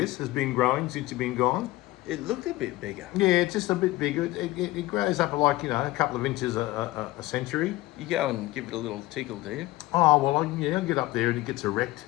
has been growing since you've been gone. It looked a bit bigger. Yeah, it's just a bit bigger. It grows up like, a couple of inches a century. You go and give it a little tickle, do you? Oh, well, I get up there and it gets erect.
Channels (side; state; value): right; quieter; 18.5 dB